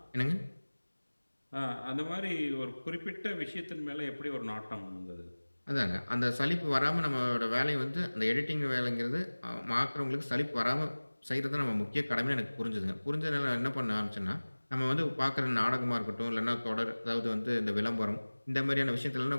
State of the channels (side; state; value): both; inverted; correlation -1.00